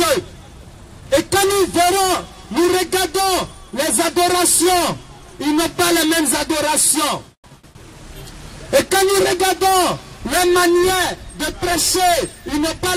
Et quand nous verrons, nous regardons les adorations, ils n'ont pas les mêmes adorations. Et quand nous regardons les manières de prêcher, ils n'ont pas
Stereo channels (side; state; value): both; identical; correlation 1.00